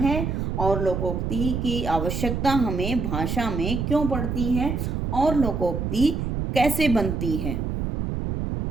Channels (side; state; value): right; noise; rumble, 2 dB below the sound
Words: और लोकोक्ति की आवश्यकता हमें भाषा में क्यों पड़ती है और लोकोक्ति कैसे बनती है।